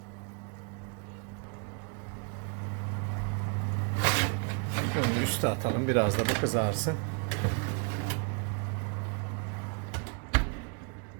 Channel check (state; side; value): quieter; left; 37.6 dB